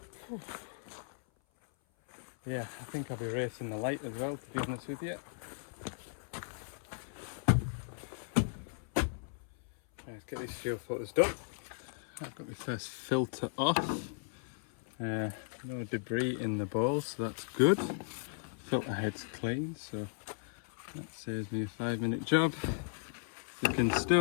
Yeah, I think I'll be racing the light as well, to be honest with you. Let's get these fuel filters done. I've got my first filter off. No debris in the bowl, so that's good. Filter head's clean, so that saves me a 5-minute job. You can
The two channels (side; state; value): right; silent; 53 dB below the other